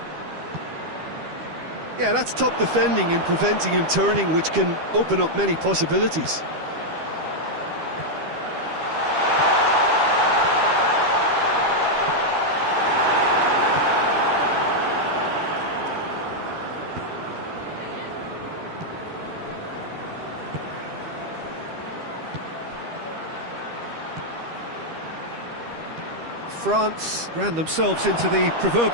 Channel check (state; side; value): late; left; 13 ms